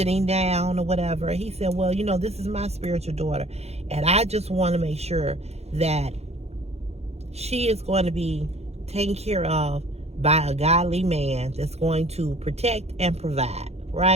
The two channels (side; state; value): left; late; 0.31 ms